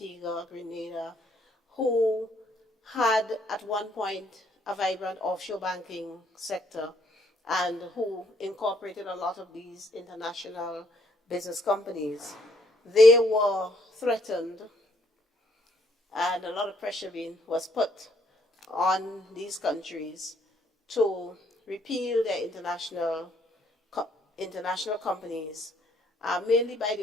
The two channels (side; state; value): both; normal; correlation 0.68